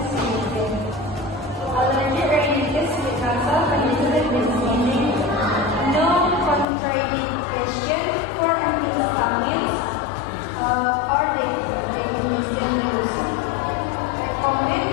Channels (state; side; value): drops out; right; at 6.7 s